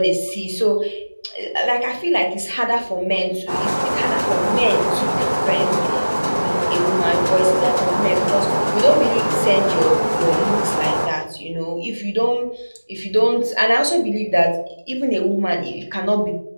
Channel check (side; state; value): both; inverted; correlation -1.00